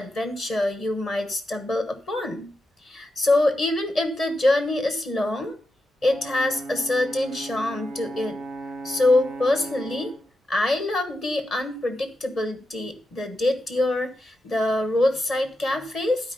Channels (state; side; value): normal; both; correlation 0.87